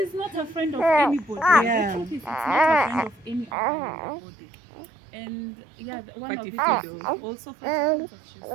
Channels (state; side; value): drops out; left; at 3.5 s